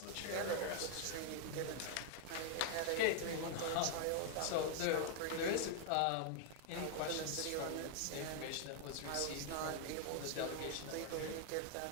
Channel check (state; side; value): different; both; correlation 0.00